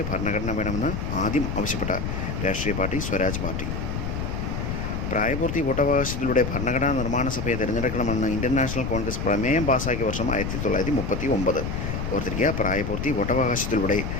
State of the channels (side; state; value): left; noise; rumble, 3 dB below the sound